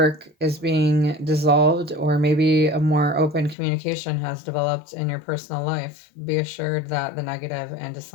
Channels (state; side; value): drops out; right; at 3.6 s